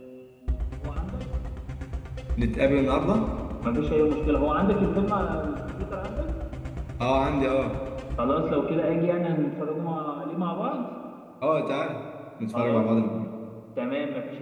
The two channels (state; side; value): identical; both; correlation 1.00